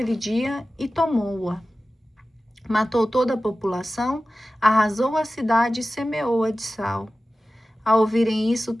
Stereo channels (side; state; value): both; normal; correlation 0.95